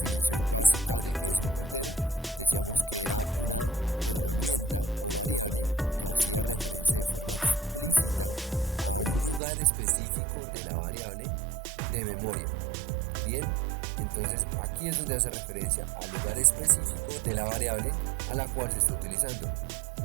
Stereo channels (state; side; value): drops out; left; at 9.4 s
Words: básica de qué es un puntero, decíamos que era una herramienta o variable que hacía referencia de forma explícita a un lugar específico de la variable de memoria. Bien, entonces aquí es donde hace referencia al lugar específico de la variable a la cual se está utilizando,